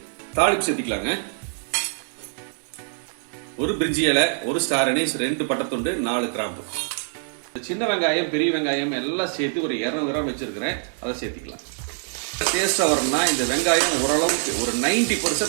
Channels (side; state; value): left; silent; digital silence